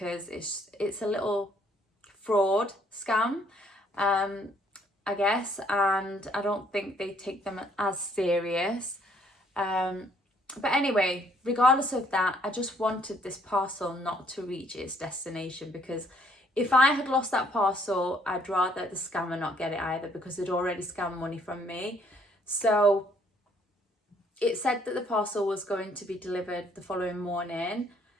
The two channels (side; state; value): both; normal; correlation 0.65